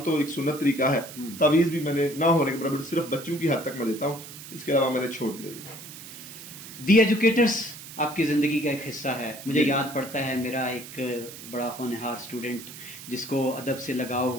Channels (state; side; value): noise; right; hiss, 14 dB below the sound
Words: تو ایک سنت طریقہ ہے، تعویذ بھی میں نے نہ ہونے کے برابر صرف بچوں کی حد تک میں دیتا ہوں، اس کے علاوہ میں نے چھوڑ دیا. دی ایجوکیٹرز آپ کی زندگی کا ایک حصہ ہے. مجھے یاد پڑتا ہے میرا ایک بڑا ہونہار اسٹوڈنٹ جس کو ادب سے لگاؤ